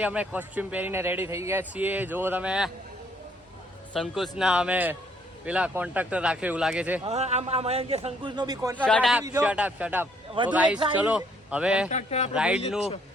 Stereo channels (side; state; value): both; normal; correlation 0.66